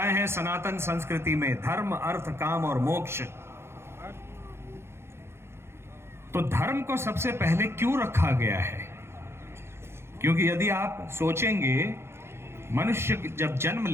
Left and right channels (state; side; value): late; left; 0.12 ms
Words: हैं सनातन संस्कृति में, धर्म अर्थ काम और मोक्ष। तो धर्म को सबसे पहले क्यों रखा गया है? क्योंकि यदि आप सोचेंगे, मनुष्य जब जन्म